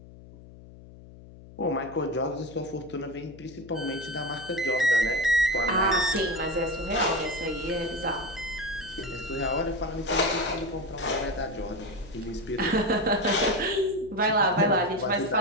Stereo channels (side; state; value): left; noise; hum, 19 dB below the sound